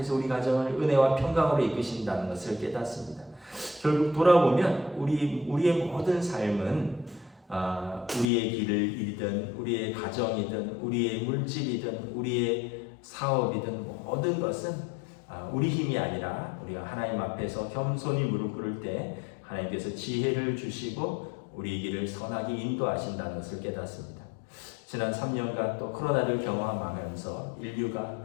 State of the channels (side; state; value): right; drops out; at 8.2 s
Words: 우리 가정을 은혜와 평강으로 이끄신다는 것을 깨닫습니다. 결국 돌아보면 우리의 모든 삶은 우리의 길을 이든 우리의 가정이든 우리의 물질이든 우리의 사업이든 모든 것은 우리 힘이 아니라 우리가 하나님 앞에서 겸손히 무릎 꿇을 때 하나님께서 지혜를 주시고 우리 길을 선하게 인도하신다는 것을 깨닫습니다. 지난 3년간 또 코로나를 경험하면서 인류가